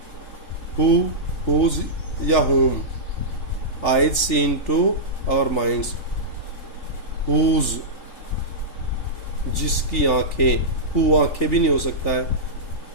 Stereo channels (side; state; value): right; late; 3.4 ms